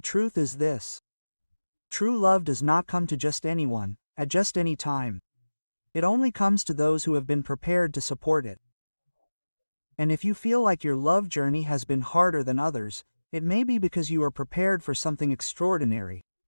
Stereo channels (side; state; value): both; inverted; correlation -1.00